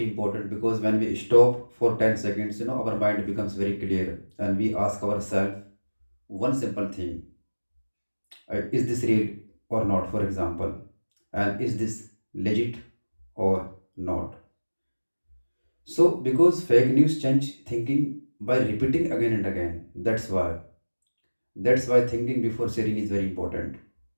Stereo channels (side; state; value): both; inverted; correlation -1.00